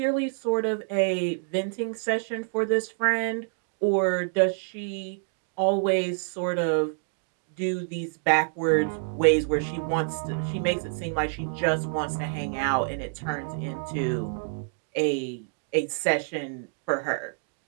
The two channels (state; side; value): silent; left; digital silence